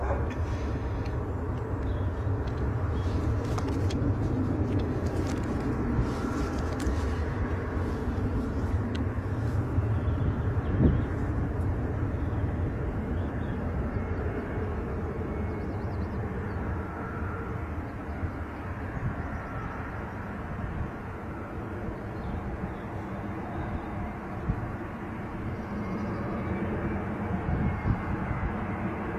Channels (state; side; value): identical; both; correlation 1.00